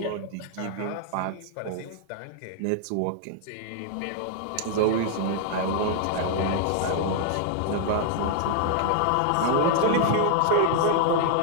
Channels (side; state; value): both; different; correlation -0.01